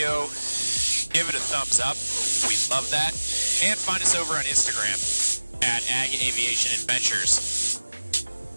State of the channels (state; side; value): inverted; both; correlation -1.00